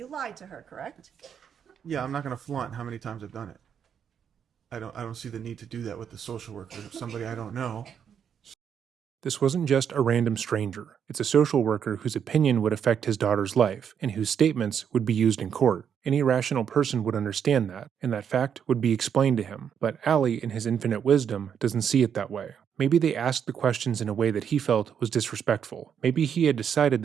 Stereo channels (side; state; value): left; quieter; 8.0 dB